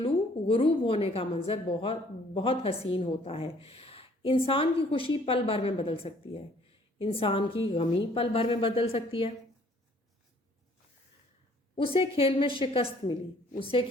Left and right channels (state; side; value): normal; both; correlation 0.59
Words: غروب ہونے کا منظر بہت بہت حسین ہوتا ہے۔ انسان کی خوشی پل بھر میں بدل سکتی ہے، انسان کی غمی پل بھر میں بدل سکتی ہے۔ اسے کھیل میں شکست ملی، اسے